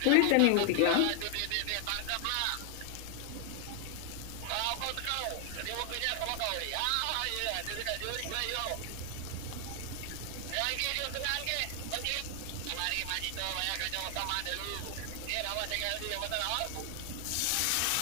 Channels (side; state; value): both; different; correlation 0.00